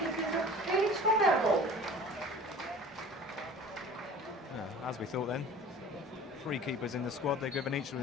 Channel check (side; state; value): both; normal; correlation 0.43